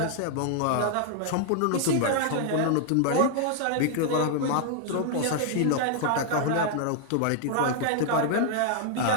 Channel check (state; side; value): different; both; correlation -0.01